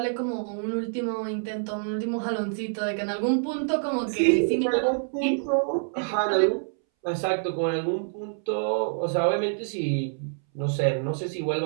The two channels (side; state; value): left; silent; 60 dB below the other